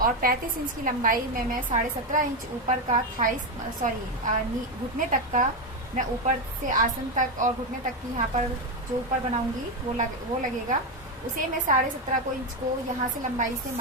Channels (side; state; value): both; normal; correlation 0.10